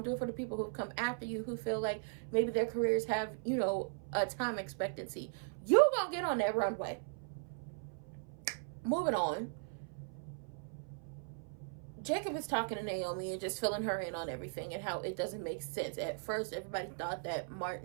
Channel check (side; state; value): left; silent; 52 dB below the other